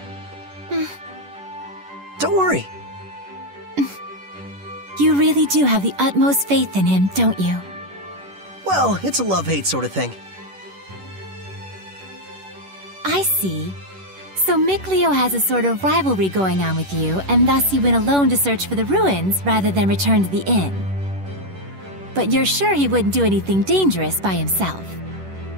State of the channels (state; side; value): late; left; 11 ms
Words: Don't worry. You really do have the utmost faith in him, don't you? Well, it's a love-hate sort of thing. I see. So Mikleo has a sort of rivalry going on with you, and thus he went alone to search for the ruins rather than return to the inn. But you're sure he wouldn't do anything dangerous by himself.